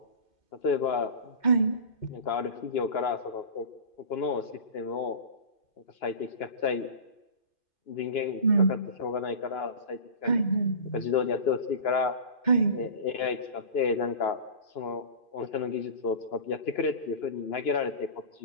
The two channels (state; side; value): late; right; 2.1 ms